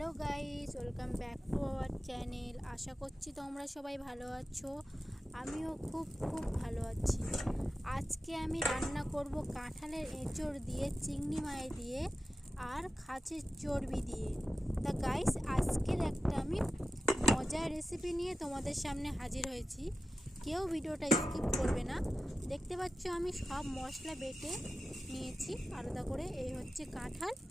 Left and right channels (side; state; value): both; normal; correlation 0.93